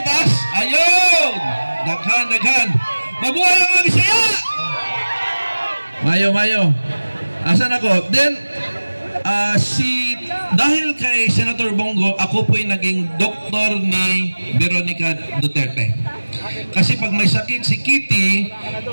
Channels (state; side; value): inverted; both; correlation -1.00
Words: Ayun! Daghan. Mabuhay ang mga Bisaya! Mayo. Asan ako? Then, dahil kay Senator Bongo, ako po'y naging doktor ni Veronica Duterte. Kasi pag may sakit si Kitty,